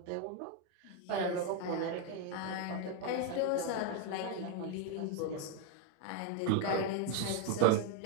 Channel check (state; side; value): different; both; correlation 0.01